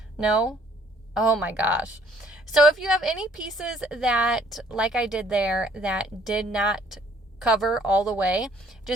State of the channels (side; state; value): both; normal; correlation 0.61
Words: No? Oh my gosh. So if you have any pieces that, like I did there, that did not cover all the way,